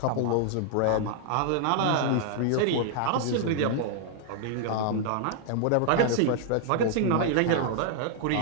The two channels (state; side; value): different; both; correlation 0.00